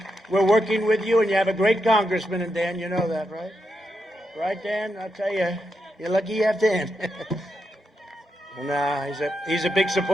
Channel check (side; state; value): both; normal; correlation 0.84